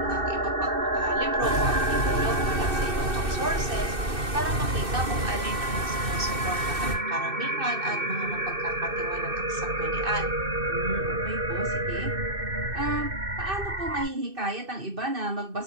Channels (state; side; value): late; left; 2.6 ms